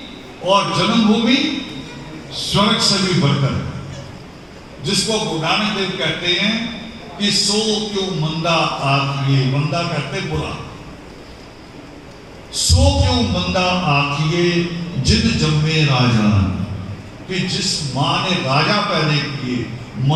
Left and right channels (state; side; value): identical; both; correlation 1.00